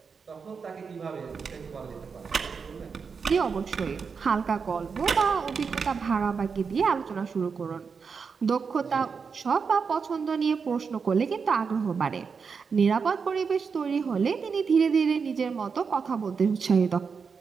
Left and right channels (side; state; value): left; quieter; 5.6 dB